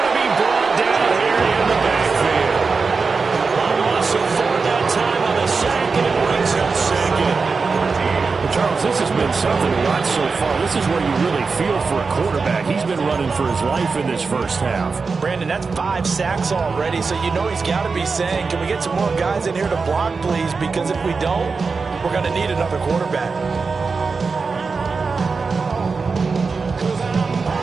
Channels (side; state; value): left; quieter; 4.6 dB